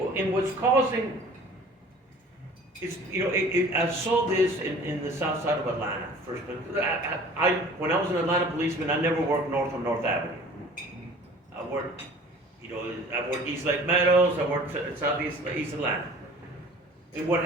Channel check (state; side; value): normal; both; correlation 0.47